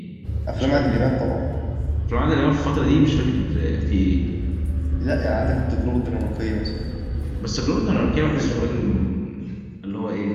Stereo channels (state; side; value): identical; both; correlation 1.00